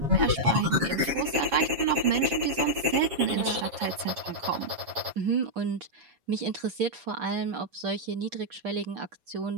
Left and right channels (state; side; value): late; left; 7.3 ms